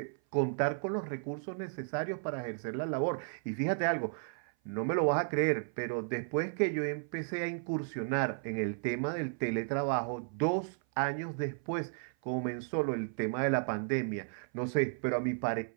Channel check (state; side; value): silent; left; 55 dB below the other